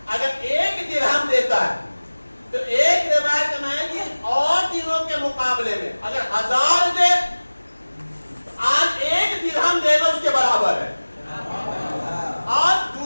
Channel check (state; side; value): inverted; both; correlation -1.00